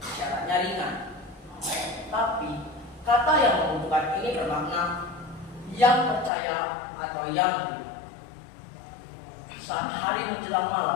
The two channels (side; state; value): right; drops out; at 6.3 s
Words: syaratnya ringan. Tapi kata yang membutuhkan ini bermakna yang percaya atau yang beriman. Saat hari menjelang